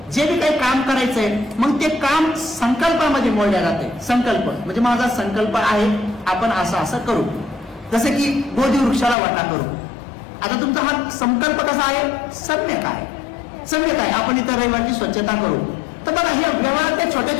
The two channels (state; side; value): drops out; right; at 9.2 s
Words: जे बी काही काम करायचंय मग ते काम संकल्पामध्ये मोडल्या जाते. संकल्प म्हणजे माझा संकल्प आहे आपण असं करू. जसं की बोधी वृक्षाला वाटा करू. आता तुमचा हा संकल्प कसा आहे? सम्यक आहे. आपण इथं रविवारची स्वच्छता करू. तर बघा, ह्या व्यवहारात त्या छोट्या